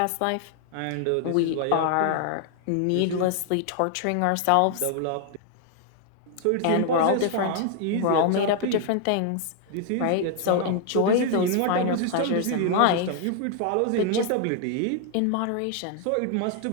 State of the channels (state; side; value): different; both; correlation 0.00